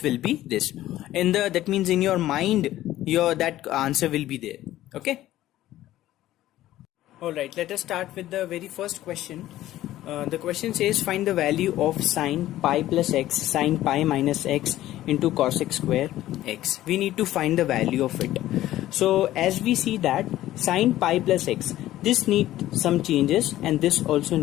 will be this. In the, that means in your mind, your that answer will be there. Okay. Alright, let us start with the very first question. The question says find the value of sine pi plus x, sine pi minus x into cosec square x. We need to find the value of it. So as we see that sine pi plus x, this needs some changes and this also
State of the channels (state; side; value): quieter; right; 14.4 dB